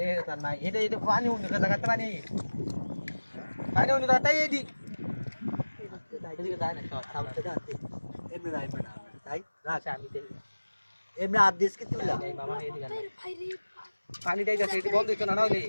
তা নাই এটা এটা পানি উনি কথা কথা পানি পানি উনি কথা এই দি এদিকে যায় না সামনে দাঁতে এমনি রাইবে না তাই আচ্ছা আমি দেখি এমনি আদেশ কি তুইলা এই মামা এদিকে ভাই রে পানি দেই যাচ্ছে এটি বন্ধ হইতো না না হইলে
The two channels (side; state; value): both; inverted; correlation -1.00